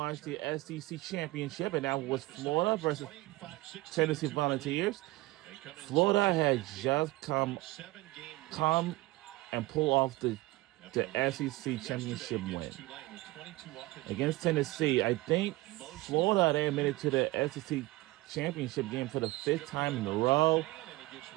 the SEC Championship, and that was Florida versus Tennessee Volunteers. Florida had just come and pull off the SEC Championship win against Tennessee. I think Florida, they admitted to the SEC Championship game for the 5th time in a row.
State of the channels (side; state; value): left; quieter; 20.2 dB